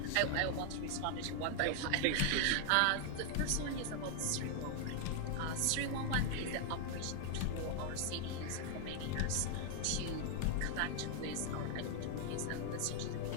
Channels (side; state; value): both; different; correlation 0.00